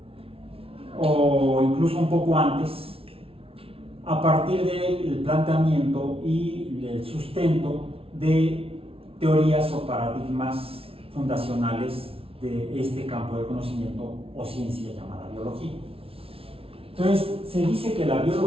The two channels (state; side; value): late; left; 0.27 ms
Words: o incluso un poco antes, a partir del planteamiento y el sustento de teorías o paradigmas fundacionales de este campo de conocimiento o ciencia llamada biología. Entonces, se dice que la